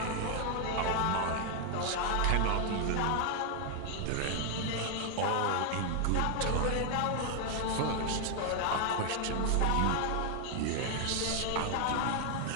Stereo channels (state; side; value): different; both; correlation 0.00